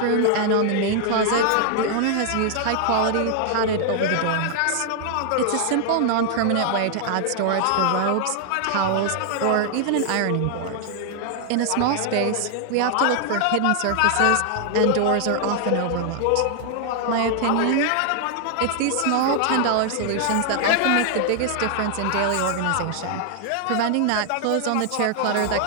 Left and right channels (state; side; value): different; both; correlation 0.00